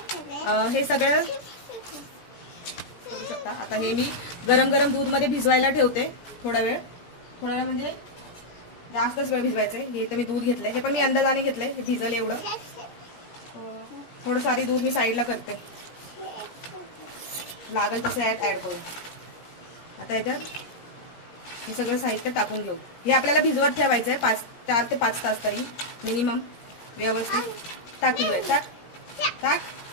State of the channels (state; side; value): late; right; 17 ms